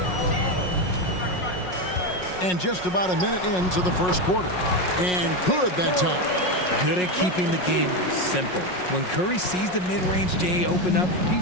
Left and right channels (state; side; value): late; right; 5.5 ms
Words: And just about a minute into the first quarter. And good that time. Good at keeping the game simple. When Curry sees the mid-range J open up, he